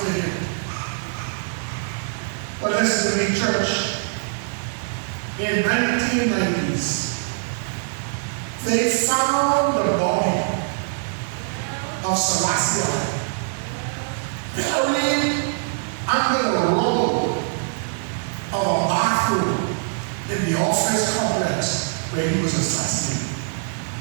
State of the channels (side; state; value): left; silent; 60 dB below the other